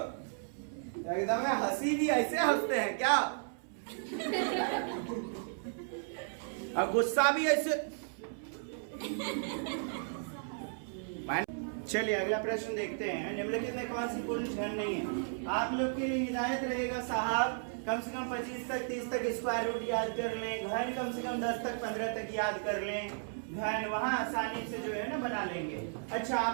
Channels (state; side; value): silent; left; 55 dB below the other